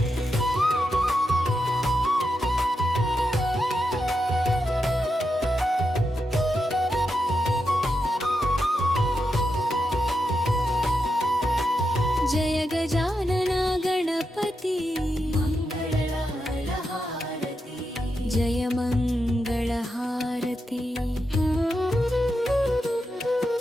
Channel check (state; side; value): normal; both; correlation 0.86